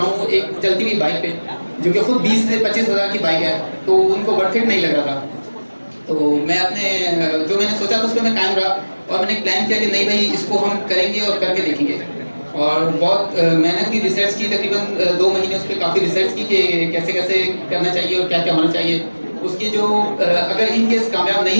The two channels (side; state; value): both; inverted; correlation -1.00